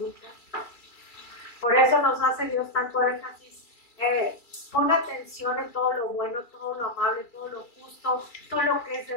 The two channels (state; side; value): late; right; 2.3 ms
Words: Por eso nos hace Dios tanto énfasis. Pon atención en todo lo bueno, todo lo amable, todo lo justo, todo lo que es de